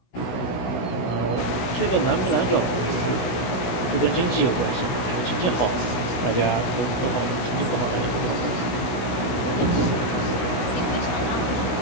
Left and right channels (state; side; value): late; right; 16 ms